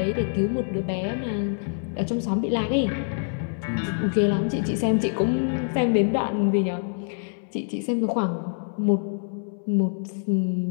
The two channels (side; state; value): right; silent; 61 dB below the other